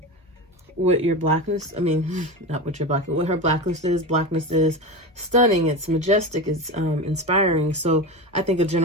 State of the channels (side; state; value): both; normal; correlation 0.24